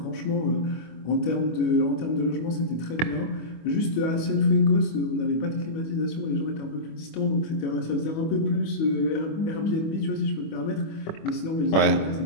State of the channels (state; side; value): late; right; 25 ms